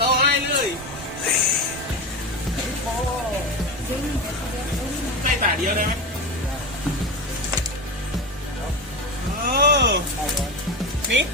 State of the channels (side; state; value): both; normal; correlation 0.21